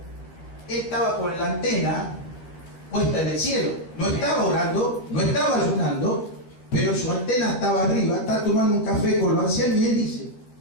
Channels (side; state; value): right; late; 12 ms